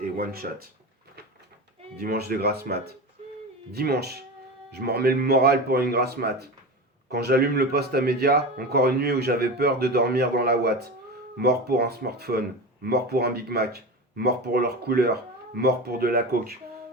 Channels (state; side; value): normal; both; correlation 0.26